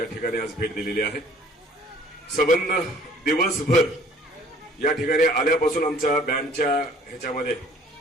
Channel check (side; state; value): both; normal; correlation 0.55